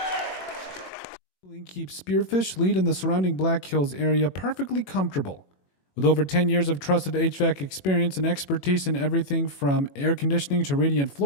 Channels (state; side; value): late; right; 21 ms